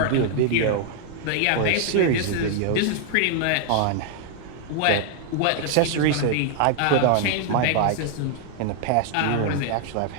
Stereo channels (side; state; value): both; different; correlation 0.00